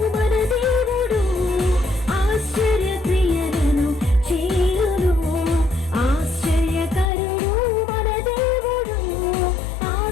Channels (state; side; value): drops out; right; at 7.1 s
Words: మన దేవుడు, ఆశ్చర్య క్రియలను చేయును, ఆశ్చర్యకరుడు మన దేవుడు,